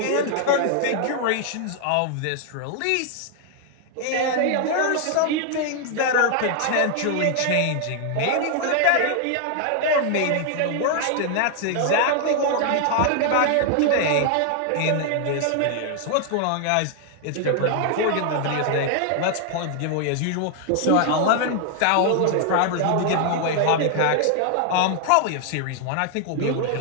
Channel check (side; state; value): both; different; correlation 0.00